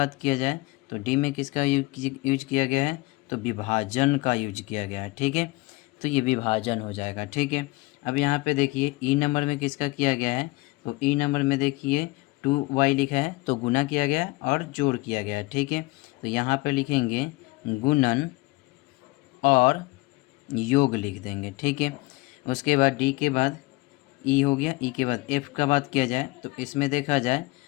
किया जाए तो डी में किसका यूज किया गया है, तो विभाजन का यूज किया गया है। ठीक है। तो ये विभाजन हो जाएगा। ठीक है। अब यहाँ पे देखिए ई नंबर में किसका किया गया है, तो ई नंबर में देखिए 2y लिखा है, तो गुना किया गया है और जोड़ किया गया है। ठीक है। तो यहाँ पे लिखेंगे गुणन और योग लिख देंगे। ठीक है। उसके बाद डी के बाद ई हो गया, ई के बाद एफ का बात किया जाए तो इसमें देखा जाए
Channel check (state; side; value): quieter; right; 22.7 dB